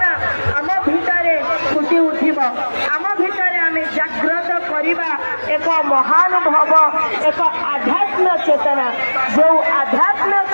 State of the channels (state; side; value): inverted; both; correlation -1.00